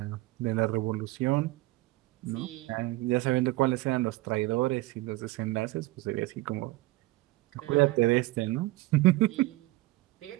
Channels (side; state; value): left; quieter; 19.6 dB